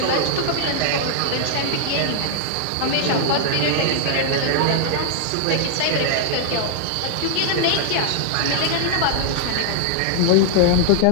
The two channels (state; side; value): different; both; correlation -0.01